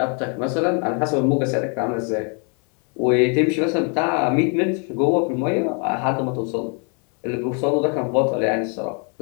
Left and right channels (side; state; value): right; quieter; 38.4 dB